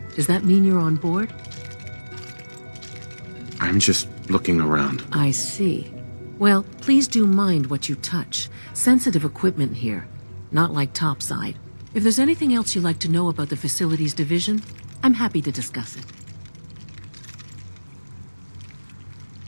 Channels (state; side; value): inverted; both; correlation -1.00